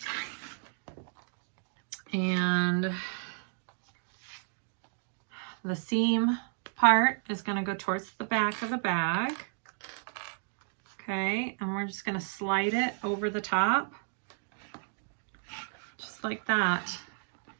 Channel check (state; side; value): silent; left; 56 dB below the other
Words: And the seam part is going to go towards the back of the bag. Okay, and we're just going to slide it over the top, just like that.